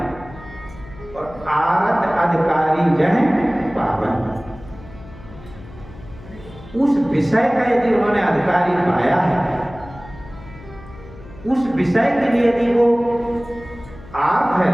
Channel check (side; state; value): left; noise; hum, 18 dB below the sound